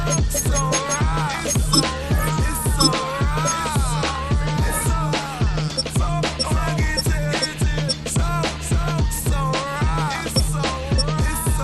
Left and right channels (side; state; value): both; identical; correlation 1.00